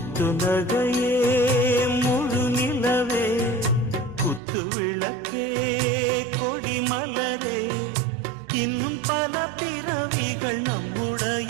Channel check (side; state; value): left; drops out; at 4.4 s